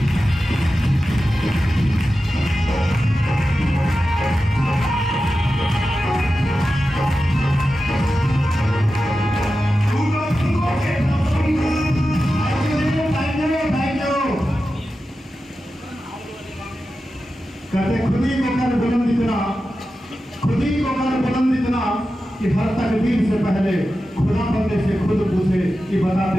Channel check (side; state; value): both; normal; correlation 0.92